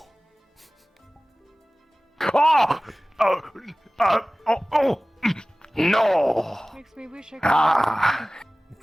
No. Makes me wish I could.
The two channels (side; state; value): both; normal; correlation 0.98